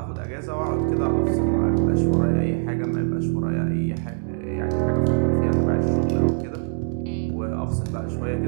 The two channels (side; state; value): left; silent; digital silence